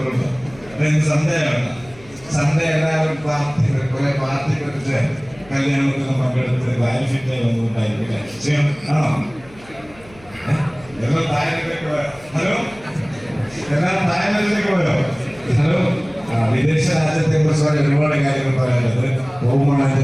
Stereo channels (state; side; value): noise; left; hum, 23 dB below the sound